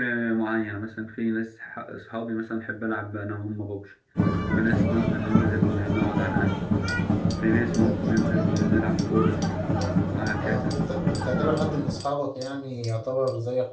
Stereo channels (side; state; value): both; identical; correlation 1.00